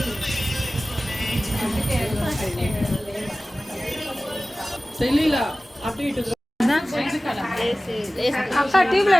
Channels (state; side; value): normal; both; correlation 0.97